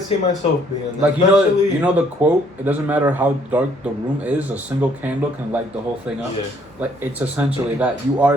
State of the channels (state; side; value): normal; both; correlation 0.65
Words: see myself being that. Like you know the quote, it doesn't matter how dark the room is, a single candle can light the whole thing up. Yeah. Like it's essentially that. You are